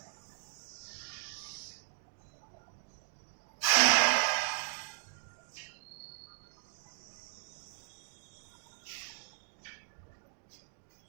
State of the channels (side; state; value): left; silent; digital silence